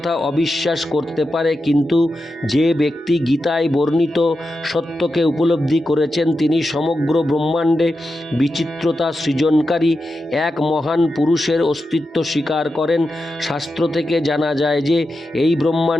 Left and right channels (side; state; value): both; normal; correlation 0.89